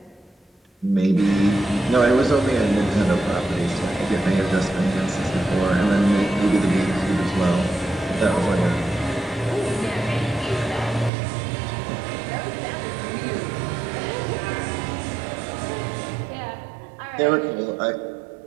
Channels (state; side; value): drops out; left; at 11.1 s